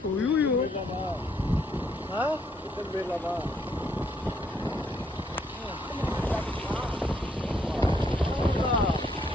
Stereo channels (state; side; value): normal; both; correlation 0.71